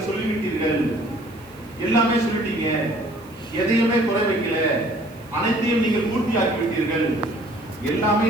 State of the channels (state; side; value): noise; right; hiss, 27 dB below the sound